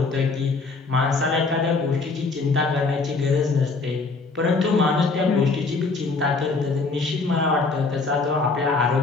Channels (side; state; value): right; quieter; 4.0 dB